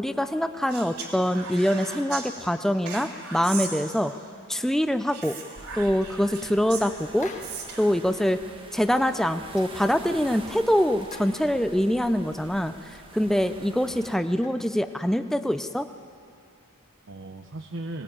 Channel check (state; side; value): normal; both; correlation 0.92